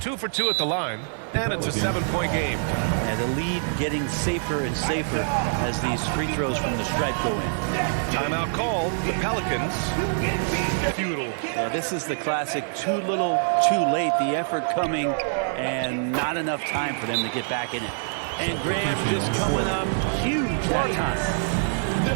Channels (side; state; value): left; silent; digital silence